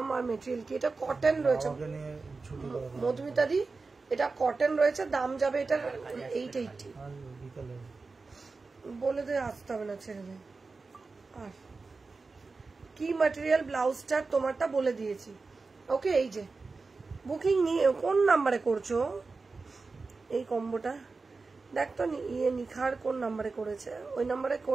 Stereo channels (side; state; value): left; quieter; 4.1 dB